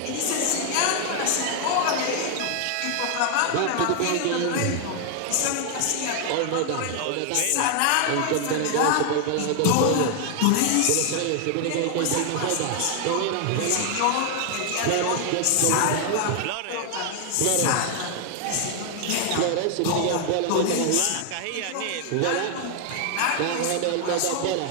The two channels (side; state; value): both; different; correlation 0.00